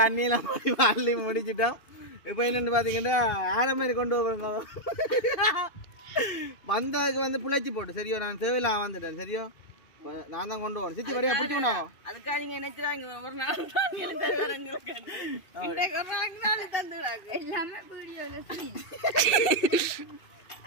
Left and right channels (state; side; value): late; right; 2.7 ms